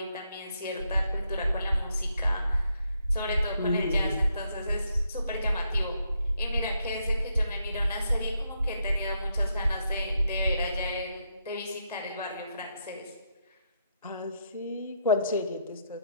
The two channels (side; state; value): both; inverted; correlation -0.77